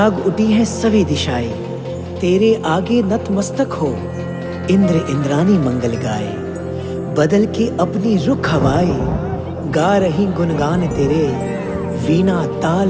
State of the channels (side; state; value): both; identical; correlation 1.00